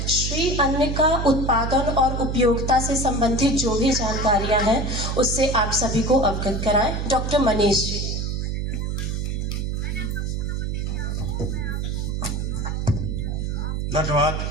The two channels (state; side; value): noise; right; hum, 1 dB below the sound